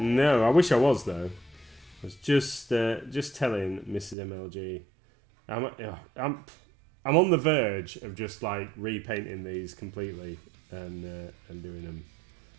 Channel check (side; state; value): left; drops out; at 4.2 s